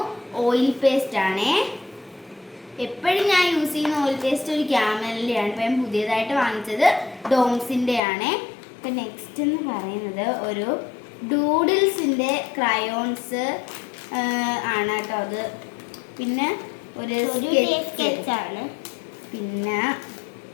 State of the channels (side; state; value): right; drops out; at 8.0 s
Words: ഓയിൽ പേസ്റ്റ് ആണ്. എപ്പോഴും ഞാൻ യൂസ് ചെയ്യുന്ന ഓയിൽ പേസ്റ്റ് ഒരു ക്യാമലിൻ്റെ ആണ്. ഇപ്പം ഞാൻ പുതിയതായിട്ട് വാങ്ങിച്ചത് ഡോംസിൻ്റെ ആണ്. ഇപ്പം നെക്സ്റ്റ് എന്ന് പറയുന്നത് ഒരു ഡൂഡിൽസിൻ്റെ ക്രയോൺസ് ആണ് കേട്ടോ അത്. പിന്നെ ഒരു സ്കെച്ചാണ്. പിന്നെ